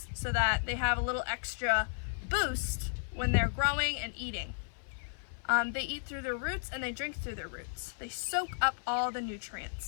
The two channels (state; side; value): silent; right; 55 dB below the other